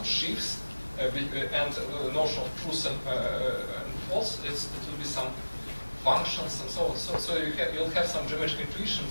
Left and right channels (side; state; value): both; inverted; correlation -1.00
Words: sheaves, and the notion of truth and false, it will be some functions and so on. So you'll have some geometric intuition